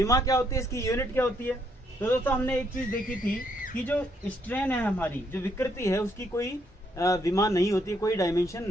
क्या होती है? इसकी यूनिट क्या होती है? तो दोस्तों हमने एक चीज देखी थी कि जो स्ट्रेन है हमारी, जो विकृति है, उसकी कोई विमा नहीं होती है, कोई डायमेंशन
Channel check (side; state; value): both; normal; correlation 0.73